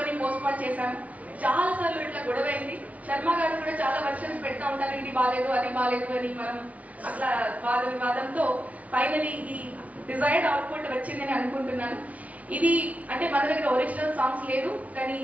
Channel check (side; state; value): left; late; 0.068 ms